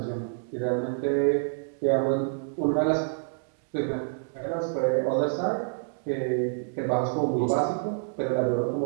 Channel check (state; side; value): silent; left; digital silence